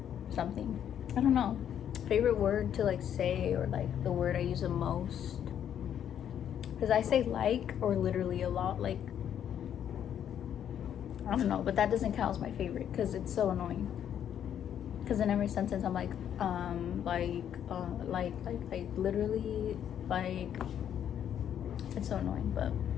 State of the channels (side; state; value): right; quieter; 9.5 dB